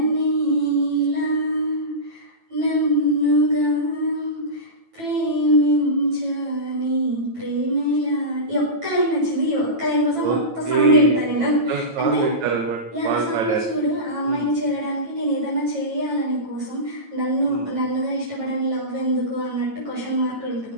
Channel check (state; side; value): late; left; 9.0 ms